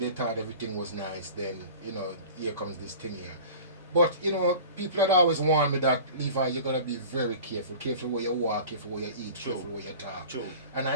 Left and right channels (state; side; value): inverted; both; correlation -0.39